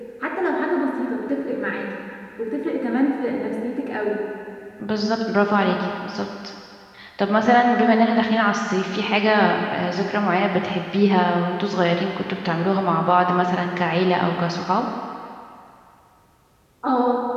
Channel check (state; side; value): identical; both; correlation 1.00